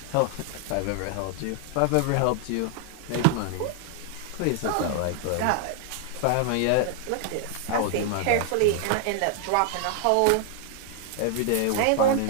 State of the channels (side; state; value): both; different; correlation 0.00